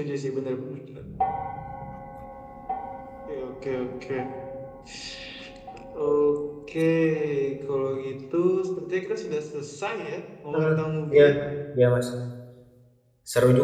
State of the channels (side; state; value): both; identical; correlation 1.00